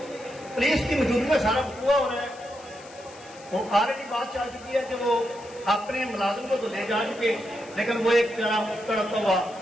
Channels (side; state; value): left; noise; hiss, 21 dB below the sound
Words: پولیس کی موجودگی میں سارا وقوع ہو رہا ہے. وہ آلریڈی بات چل چکی ہے کہ وہ اپنے ملازم کو تو لے جا چکے، لیکن وہ ایک تڑپتا ہوا